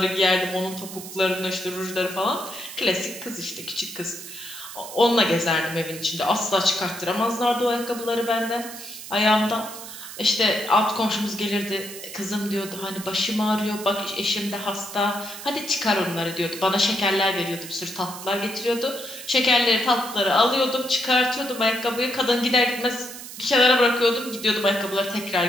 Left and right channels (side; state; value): right; noise; hiss, 12 dB below the sound